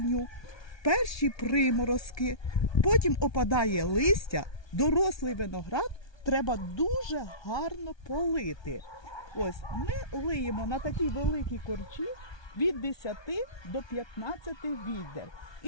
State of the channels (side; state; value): right; late; 1.2 ms